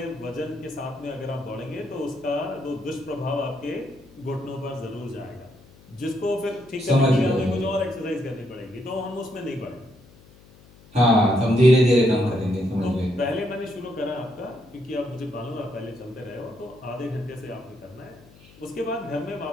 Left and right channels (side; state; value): left; noise; hum, 25 dB below the sound